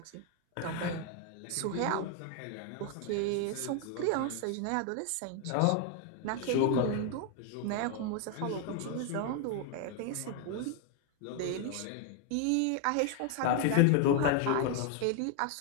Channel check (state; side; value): different; both; correlation 0.01